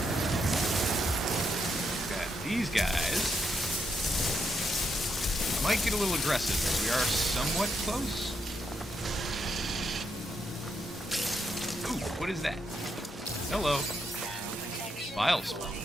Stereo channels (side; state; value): both; normal; correlation 0.80